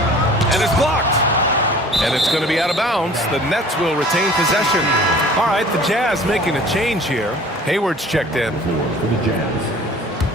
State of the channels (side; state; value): both; normal; correlation 0.47